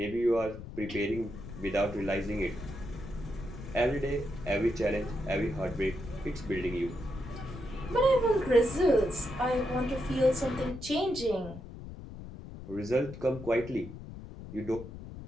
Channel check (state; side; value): noise; left; rumble, 12 dB below the sound